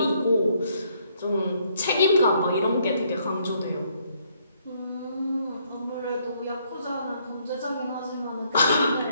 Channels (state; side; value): inverted; both; correlation -0.69